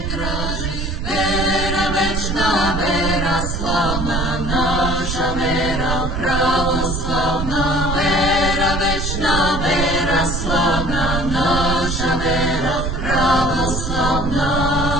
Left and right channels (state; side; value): noise; right; rumble, 3 dB below the sound